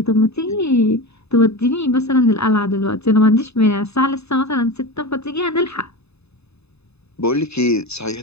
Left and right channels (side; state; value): right; late; 0.79 ms